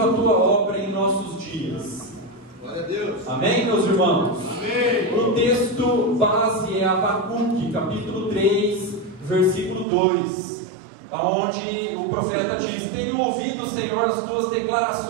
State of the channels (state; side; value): drops out; left; at 9.9 s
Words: a tua obra em nossos dias. Glória a Deus. Amém, meus irmãos? Amém. O texto base é Abacuque, capítulo 3, versículo 2, onde o profeta diz: tenho ouvido, Senhor, as tuas